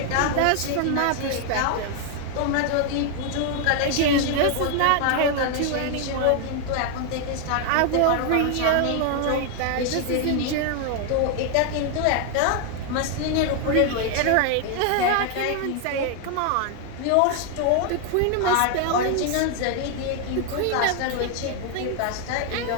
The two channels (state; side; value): different; both; correlation 0.00